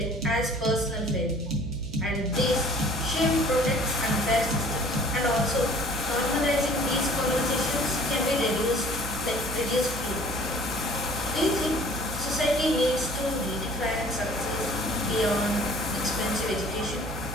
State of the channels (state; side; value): noise; right; hum, 8 dB below the sound